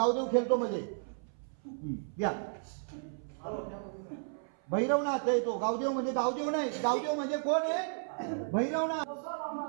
खेळतो म्हणजे या भैरवनाथ आहे तो. गावदेव म्हणजे गावदेव नाही, गावदेव म्हणजे कोण आहे? भैरवनाथ.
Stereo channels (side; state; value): left; silent; 56 dB below the other